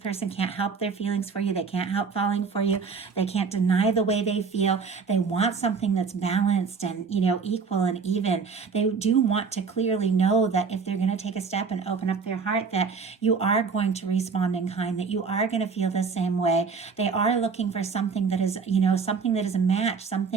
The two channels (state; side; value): quieter; left; 5.2 dB